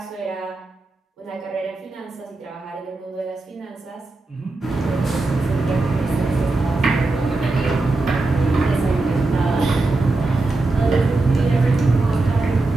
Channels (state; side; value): quieter; left; 3.2 dB